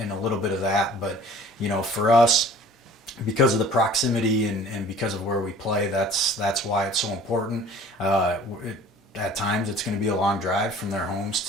a little bit of that. But for us, because of the proximity and because of where we play, that's why it's so important. At times, it's going to be a long drive from their homes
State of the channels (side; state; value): both; normal; correlation 0.49